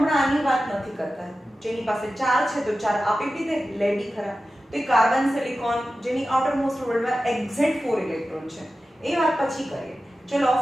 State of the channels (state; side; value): normal; both; correlation 0.94